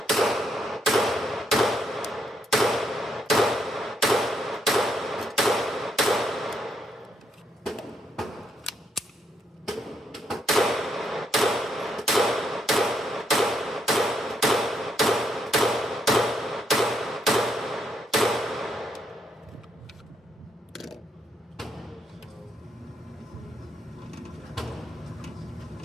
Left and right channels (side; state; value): both; normal; correlation 0.75